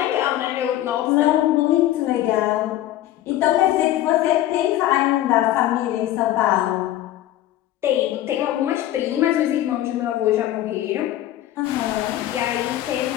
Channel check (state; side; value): quieter; right; 13.6 dB